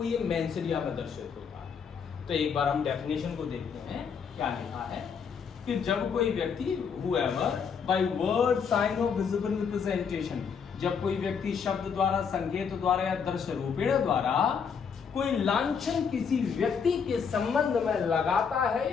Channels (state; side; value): quieter; right; 6.5 dB